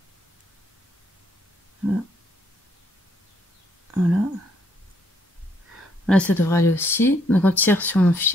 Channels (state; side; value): normal; both; correlation 0.70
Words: Voilà. Voilà. Là, ça devrait aller aussi. Donc on tire sur